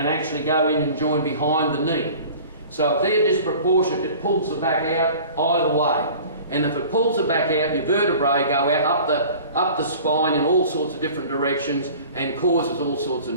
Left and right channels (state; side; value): inverted; both; correlation -0.44